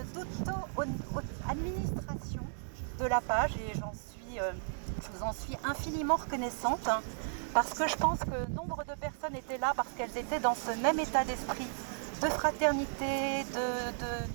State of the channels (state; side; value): silent; left; digital silence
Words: de la page et je vous en suis infiniment reconnaissante. Parce que je pense que nombre de personnes étaient là parce qu'elles étaient dans ce même état d'esprit de fraternité,